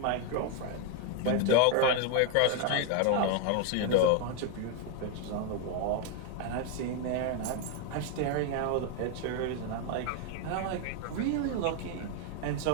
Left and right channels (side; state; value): both; different; correlation 0.01